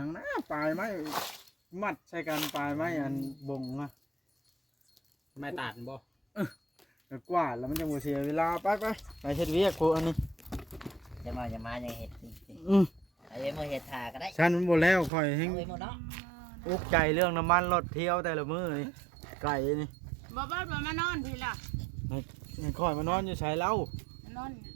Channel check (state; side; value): drops out; left; at 15.1 s